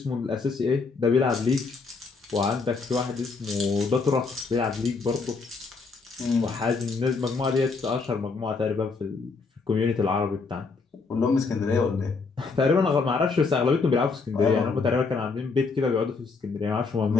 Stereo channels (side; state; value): right; quieter; 4.4 dB